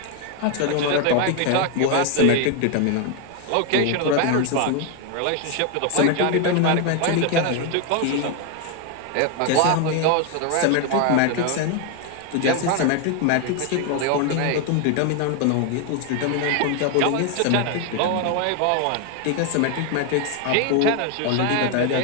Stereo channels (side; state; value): both; different; correlation 0.01